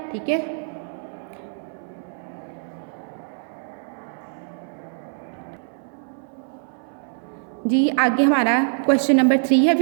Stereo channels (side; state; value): left; silent; 62 dB below the other